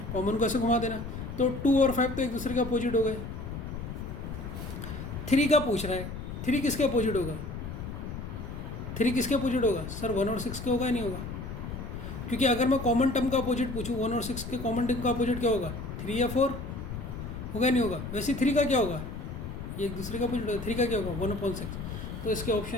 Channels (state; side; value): noise; left; rumble, 7 dB below the sound